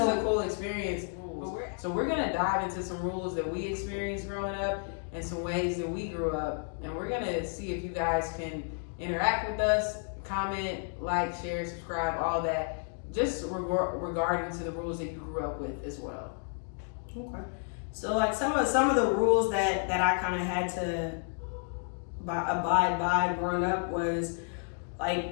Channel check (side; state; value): right; silent; 57 dB below the other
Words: cool experience. So we're going to dive into some rules that we experienced growing up and some ways that we grew up. And we're going to see if you guys can interact with us, comment, like, share, subscribe, all that, just regarding to the rules that you grew up with as well. Okay. So like some of the rules that I kind of had to abide by growing up was